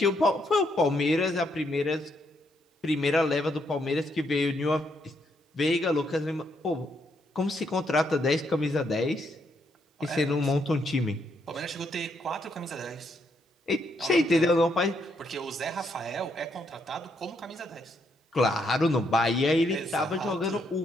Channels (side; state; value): both; normal; correlation 0.75